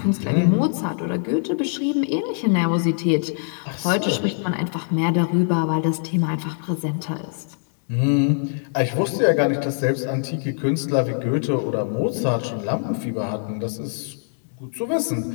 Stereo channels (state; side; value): silent; right; 64 dB below the other